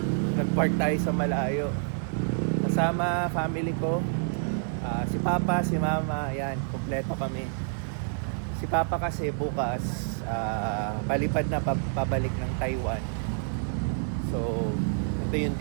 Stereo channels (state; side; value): silent; left; digital silence